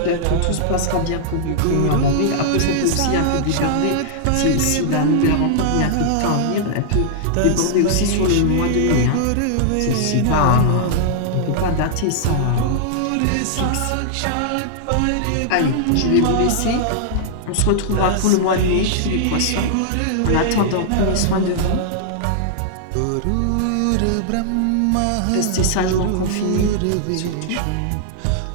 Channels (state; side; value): different; both; correlation -0.01